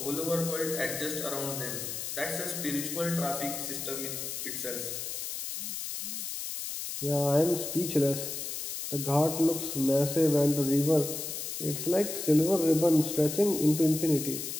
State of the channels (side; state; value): left; noise; hiss, 5 dB below the sound